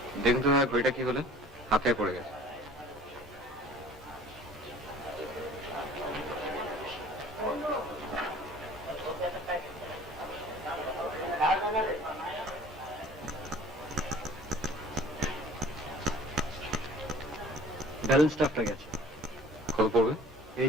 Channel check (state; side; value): normal; both; correlation 0.48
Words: দেখুন তো দাদা ঘড়িটা কি হলো, হাতে পড়ে গেছে। ব্যালেন্স স্টাফটা গেছে। কত পড়বে?